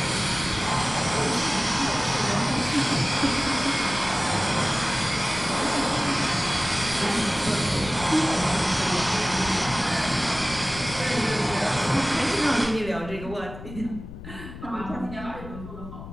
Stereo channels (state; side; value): noise; left; rumble, 12 dB below the sound